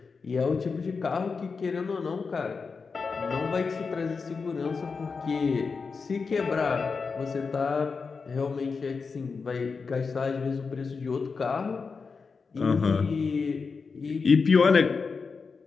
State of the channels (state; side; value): quieter; right; 4.9 dB